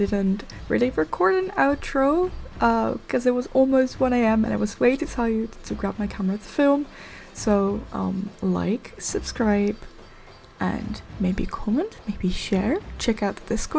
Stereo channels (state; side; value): identical; both; correlation 1.00